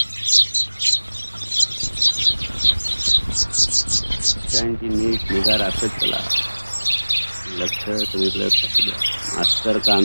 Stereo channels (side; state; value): both; inverted; correlation -1.00